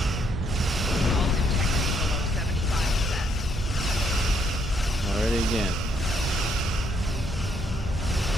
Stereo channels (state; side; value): normal; both; correlation 0.71